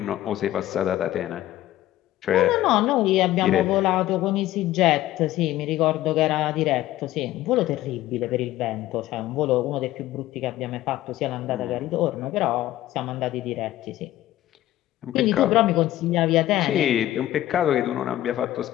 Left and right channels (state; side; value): quieter; right; 14.5 dB